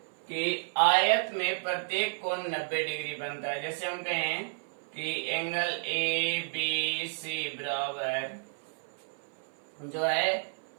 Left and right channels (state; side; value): silent; left; 57 dB below the other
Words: कि आयत में प्रत्येक कोण 90 डिग्री बनता है। जैसे हम कहें कि एंगल ए बी सी बराबर जो है